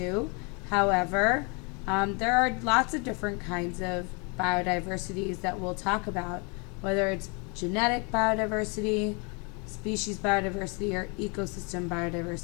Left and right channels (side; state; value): right; quieter; 33.0 dB